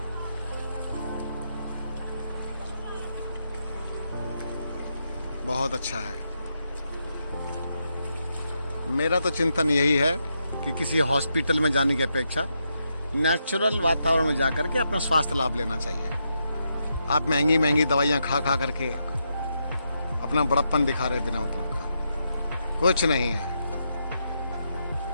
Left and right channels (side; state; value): both; inverted; correlation -0.82